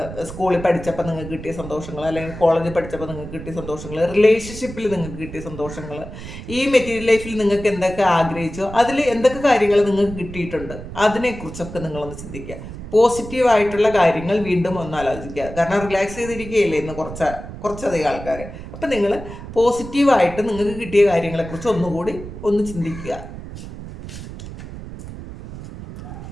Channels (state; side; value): noise; right; rumble, 11 dB below the sound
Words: സ്കൂളിൽ പഠിച്ചപ്പോൾ നിങ്ങൾക്ക് കിട്ടിയ സന്തോഷങ്ങൾ, അല്ലെങ്കിൽ കോളേജിൽ പഠിച്ചപ്പോൾ നിങ്ങൾക്ക് കിട്ടിയ സന്തോഷങ്ങൾ, റിലേഷൻഷിപ്പിൽ നിങ്ങൾക്ക് കിട്ടിയ സന്തോഷങ്ങൾ, ഈ മെറ്റീരിയൽ ലൈഫിൽ നിങ്ങൾക്ക് എന്തൊക്കെ ആഗ്രഹിച്ചോ അതിൽ എന്തൊക്കെ കാര്യങ്ങൾ നിങ്ങൾക്ക് കിട്ടിയിട്ടുണ്ട്, അതിനെക്കുറിച്ചൊക്കെ നിങ്ങളൊന്ന് ചിന്തിക്കുക. പോസിറ്റീവായിട്ടുള്ള കാര്യങ്ങൾ വീണ്ടും ഒന്ന് ആലോചിക്കുക. കാരണം റിലാക്സ് ചെയ്തിരിക്കുകയില്ലേ ഇന്ന് കുറച്ചധികം ആൾക്കാർ. അപ്പം നിങ്ങൾ പോസിറ്റീവായിട്ട് നിങ്ങൾക്ക് കിട്ടിയ കാര്യങ്ങളെക്കുറിച്ച് ഒന്നുകൂടി ഒന്ന് ചിന്തിക്കുക.